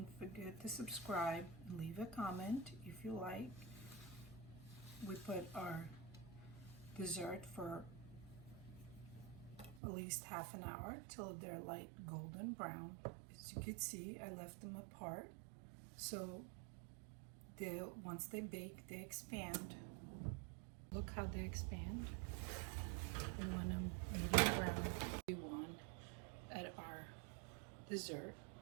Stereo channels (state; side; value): drops out; left; at 9.8 s